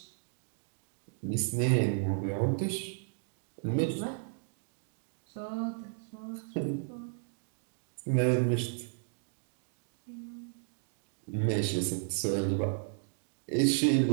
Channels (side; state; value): left; silent; digital silence